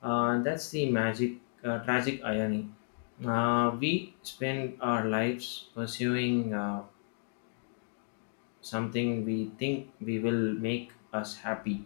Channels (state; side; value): silent; right; 56 dB below the other